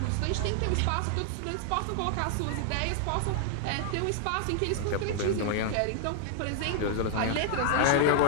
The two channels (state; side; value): different; both; correlation -0.01